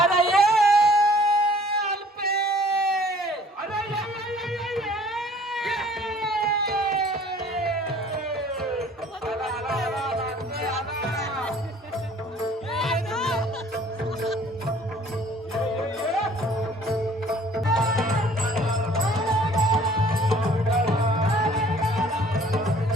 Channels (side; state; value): both; normal; correlation 0.54